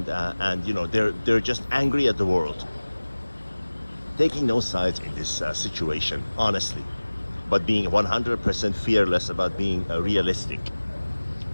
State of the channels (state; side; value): inverted; both; correlation -1.00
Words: they're just angry at the world, taking no sides in this situation, honestly, but being 100% fearless about being realistic.